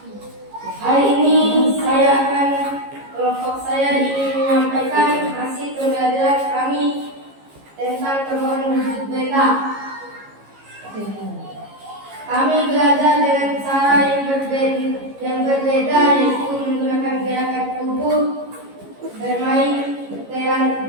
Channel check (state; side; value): late; left; 15 ms